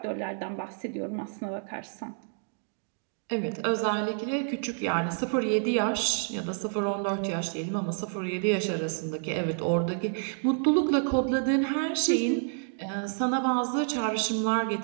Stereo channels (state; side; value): silent; left; digital silence